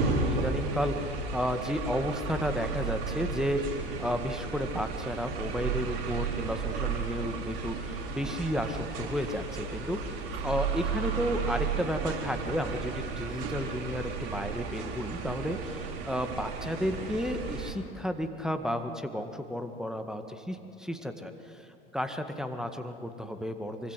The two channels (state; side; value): normal; both; correlation 0.54